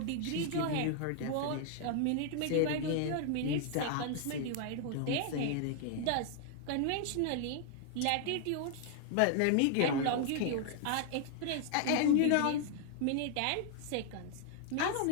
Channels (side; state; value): both; different; correlation 0.00